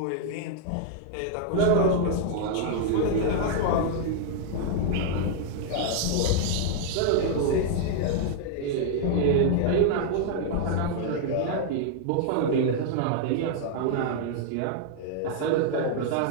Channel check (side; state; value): both; different; correlation -0.01